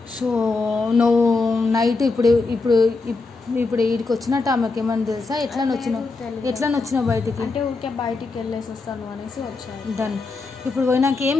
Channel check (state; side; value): quieter; right; 3.9 dB